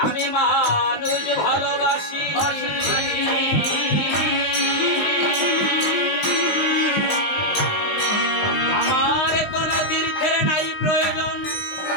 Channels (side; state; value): right; late; 19 ms